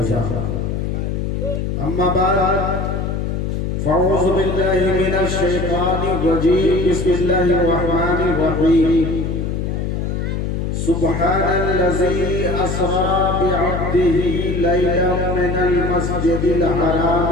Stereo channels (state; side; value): noise; left; hum, 2 dB below the sound